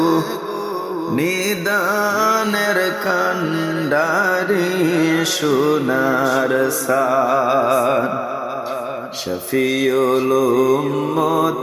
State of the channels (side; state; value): both; identical; correlation 1.00